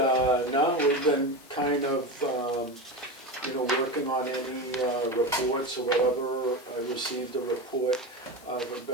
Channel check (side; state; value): left; noise; hiss, 24 dB below the sound